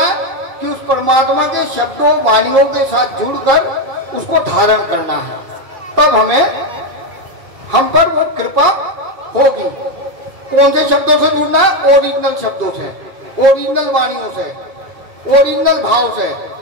कि उस परमात्मा के शब्दों, वाणियों के साथ जुड़कर उसको धारण करना है। तब हमें हम पर वो कृपा होगी। कौन से शब्दों से जुड़ना है? ओरिजिनल शब्दों से, ओरिजिनल वाणियों से, ओरिजिनल भाव से,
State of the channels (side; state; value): left; late; 2.5 ms